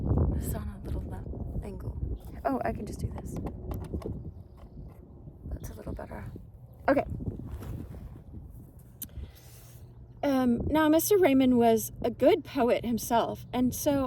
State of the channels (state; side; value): identical; both; correlation 1.00